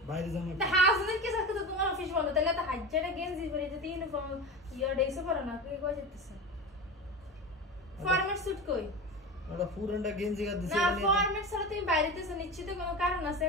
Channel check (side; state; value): both; normal; correlation 0.27